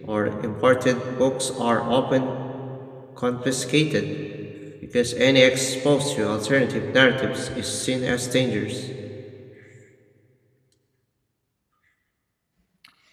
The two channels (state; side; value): identical; both; correlation 1.00